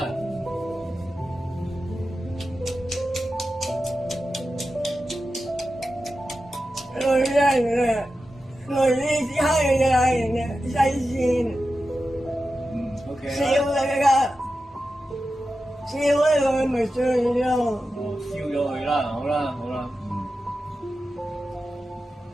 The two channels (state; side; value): normal; both; correlation 0.92